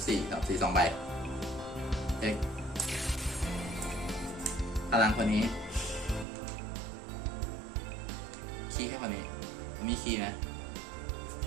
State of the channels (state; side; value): drops out; left; at 6.2 s